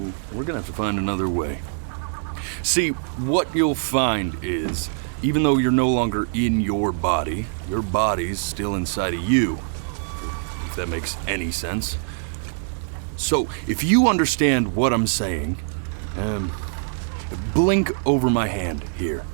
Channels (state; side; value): silent; left; 63 dB below the other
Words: we're gonna have to find another way. See, what you'll find is, even though you're no longer in your body's still inside of you. If that makes any sense. So, if you understand what I'm saying, blink over my hand here.